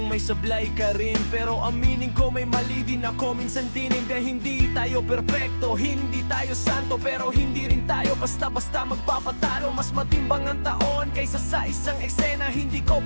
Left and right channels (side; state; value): both; inverted; correlation -1.00